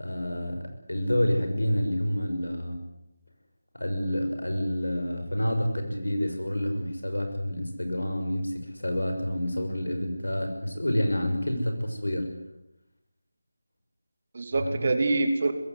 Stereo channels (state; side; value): inverted; both; correlation -0.96